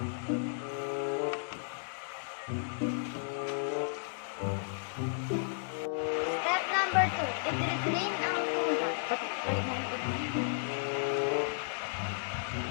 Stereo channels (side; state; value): right; silent; digital silence